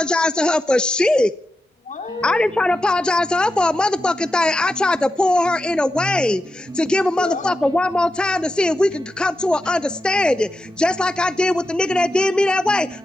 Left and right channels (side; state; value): both; normal; correlation 0.89